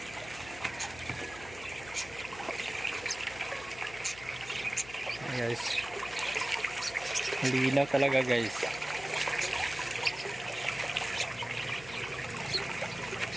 Guys, malinaw talaga guys.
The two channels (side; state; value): left; noise; hum, 17 dB below the sound